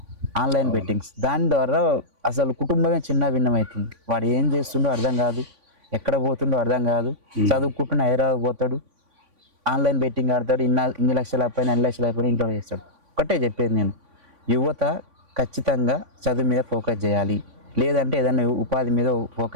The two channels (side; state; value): left; late; 3.5 ms